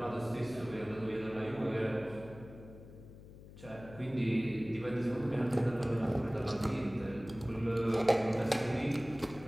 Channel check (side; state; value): left; noise; hum, 17 dB below the sound